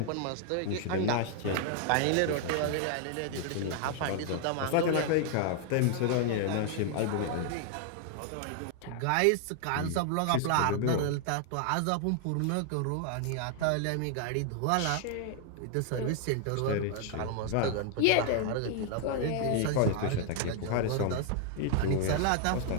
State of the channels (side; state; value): both; different; correlation 0.00